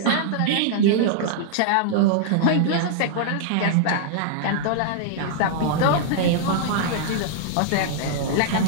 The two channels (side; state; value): both; different; correlation -0.01